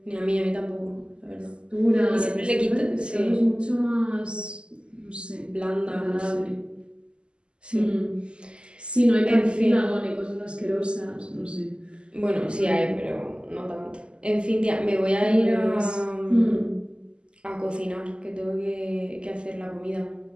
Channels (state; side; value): late; left; 0.051 ms